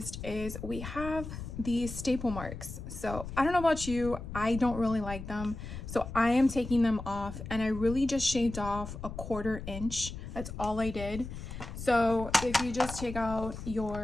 is we have these staple marks. So I don't know about you, I don't really like them. So I am taking them off, and I really just shaved off 1/4 inch. That's all I did. So if you just take out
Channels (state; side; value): noise; left; rumble, 9 dB below the sound